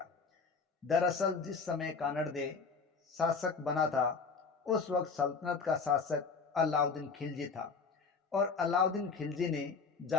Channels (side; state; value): right; quieter; 5.0 dB